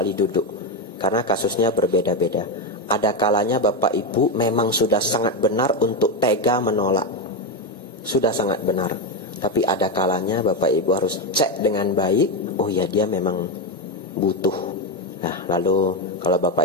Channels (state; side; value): normal; both; correlation 0.10